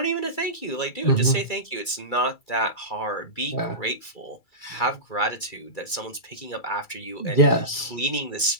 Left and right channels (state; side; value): late; right; 2.3 ms